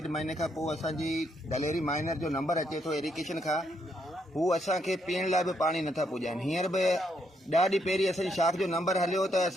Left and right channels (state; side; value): normal; both; correlation 0.75